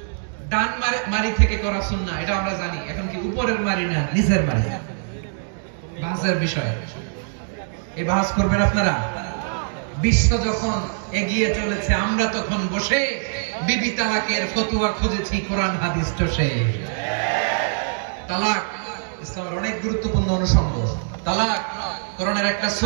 ডান মারি থেকে করা সুন্নাহ, এটা আমরা জানি। এখন কি উপরের মারি না নিচের মারি? বাহাসের বিষয়। এই বাহাস করবেন আপনারা? বিশ্ব যখন এগিয়ে চলেছে, আমরা তখন বসে বিবি তালাকের ফতোয়া খুঁজেছি কোরআন হাদিস টসে। তালাক ইসলামের অনেক গুরুত্বপূর্ণ অনুষঙ্গ। তালাক কোরআনের একটা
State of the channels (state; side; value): silent; left; digital silence